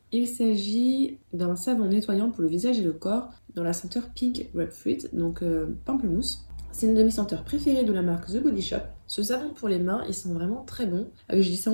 Il s'agit d'un savon nettoyant pour le visage et le corps dans la senteur Pink Grapefruit, donc pamplemousse. C'est une de mes senteurs préférées de la marque The Body Shop. Ce savon pour les mains, ils sont vraiment très bons. Je dis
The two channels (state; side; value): inverted; both; correlation -1.00